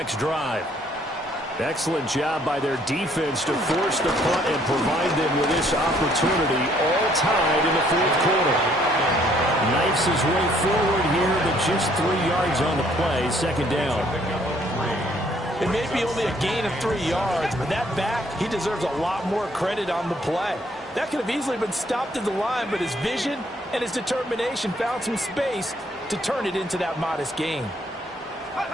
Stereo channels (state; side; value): normal; both; correlation 0.65